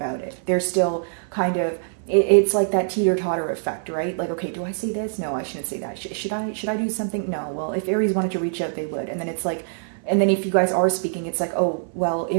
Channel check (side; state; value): left; silent; 56 dB below the other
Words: it. They're still kind of, it's like that teeter-totter effect, right? Like, okay, do I say this? No, I shouldn't say that. Should I do something? No. Well, if Aries wanted to reach out, they would. And then it's like, and then if you guys are speaking, it's like, oh, well,